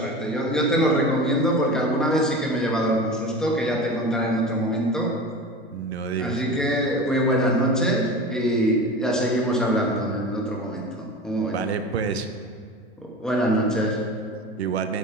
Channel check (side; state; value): both; normal; correlation 0.32